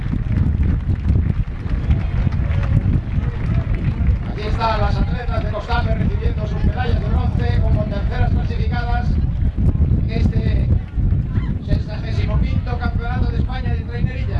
Aquí están las atletas de Costafe recibiendo sus medallas de bronce como terceras clasificadas en este 65º Campeonato de España de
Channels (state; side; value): identical; both; correlation 1.00